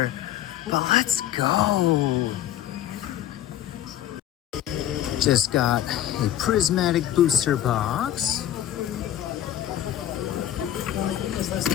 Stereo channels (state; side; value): quieter; right; 11.8 dB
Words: But let's go. Just got a prismatic booster box.